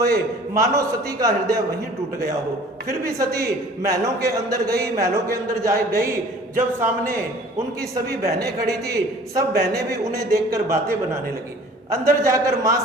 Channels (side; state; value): both; normal; correlation 0.49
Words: मानो सती का हृदय वहीं टूट गया हो, फिर भी सती महलों के अंदर गई। महलों के अंदर जा गई, जब सामने उनकी सभी बहनें खड़ी थी, सब बहनें भी उन्हें देखकर बातें बनाने लगी। अंदर जाकर मां